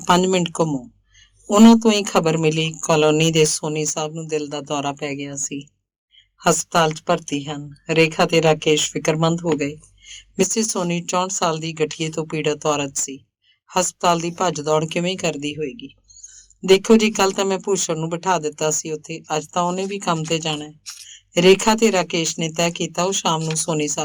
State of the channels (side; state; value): both; identical; correlation 1.00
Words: 5 ਮਿੰਟ ਘੁੰਮੋ। ਉਹਨਾਂ ਤੋਂ ਹੀ ਖਬਰ ਮਿਲੀ ਕਾਲੋਨੀ ਦੇ ਸੋਨੀ ਸਾਹਿਬ ਨੂੰ ਦਿਲ ਦਾ ਦੌਰਾ ਪੈ ਗਿਆ ਸੀ, ਹਸਪਤਾਲ 'ਚ ਭਰਤੀ ਹਨ। ਰੇਖਾ ਤੇ ਰਾਕੇਸ਼ ਫਿਕਰਮੰਦ ਹੋ ਗਏ। ਮਿਸਿਸ ਸੋਨੀ 64 ਸਾਲ ਦੀ ਗਠੀਏ ਤੋਂ ਪੀੜਤ ਔਰਤ ਸੀ। ਹਸਪਤਾਲ ਦੀ ਭੱਜ ਦੌੜ ਕਿਵੇਂ ਕਰਦੀ ਹੋਏਗੀ। ਦੇਖੋ ਜੀ, ਕੱਲ ਤਾਂ ਮੈਂ ਭੂਸ਼ਣ ਨੂੰ ਬਿਠਾ ਦਿੱਤਾ ਸੀ ਉੱਥੇ, ਅੱਜ ਤਾਂ ਉਹਨੇ ਵੀ ਕੰਮ ਤੇ ਜਾਣਾ ਹੈ। ਰੇਖਾ ਤੇ ਰਾਕੇਸ਼ ਨੇ ਤੈਅ ਕੀਤਾ ਉਹ ਸ਼ਾਮ ਨੂੰ ਸੋਨੀ